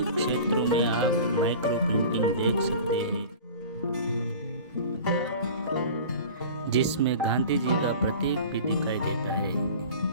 क्षेत्रों में आप माइक्रो प्रिंटिंग देख सकते हैं, जिसमें गांधी जी का प्रतीक भी दिखाई देता है।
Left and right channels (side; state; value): both; inverted; correlation -0.39